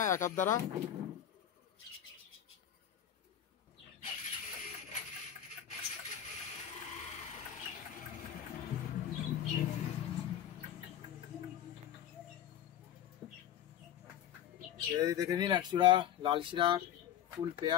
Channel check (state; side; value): quieter; right; 10.6 dB